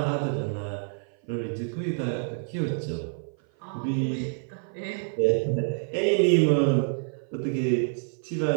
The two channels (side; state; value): left; silent; 56 dB below the other